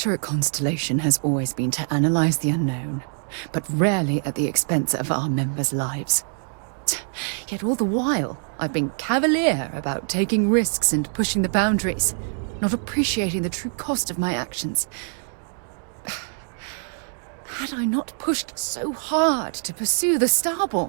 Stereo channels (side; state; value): left; silent; 56 dB below the other